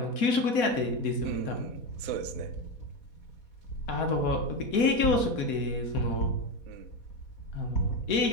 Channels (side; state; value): right; late; 4.2 ms